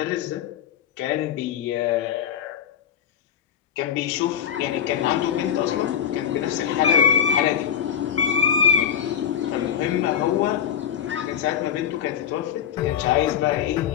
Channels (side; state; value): right; quieter; 8.8 dB